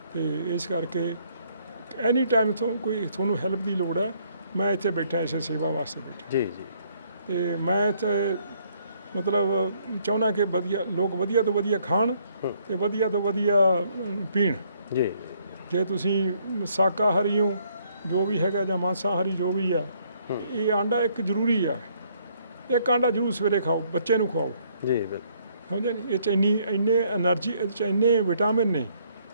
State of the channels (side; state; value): both; inverted; correlation -0.67